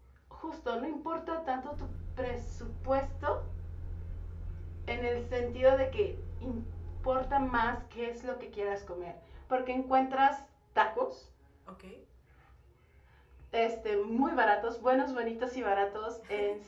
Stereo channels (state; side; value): identical; both; correlation 1.00